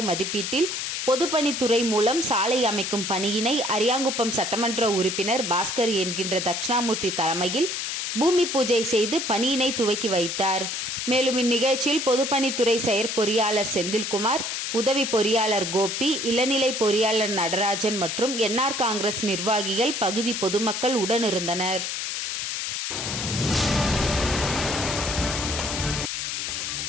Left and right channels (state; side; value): noise; left; hiss, 3 dB below the sound